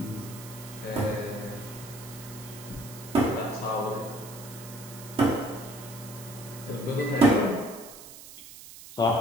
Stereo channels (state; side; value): noise; right; hiss, 15 dB below the sound